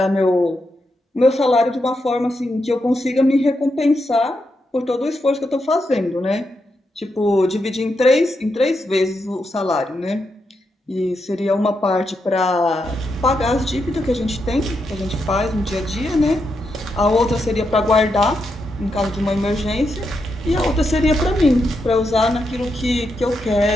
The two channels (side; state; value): both; normal; correlation 0.83